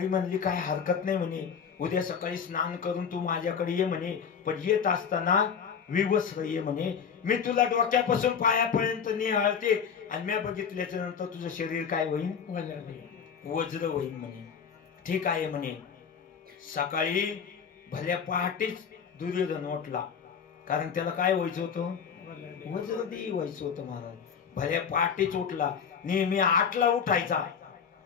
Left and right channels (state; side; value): quieter; right; 6.9 dB